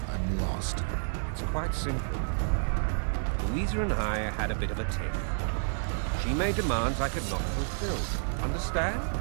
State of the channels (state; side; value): silent; left; digital silence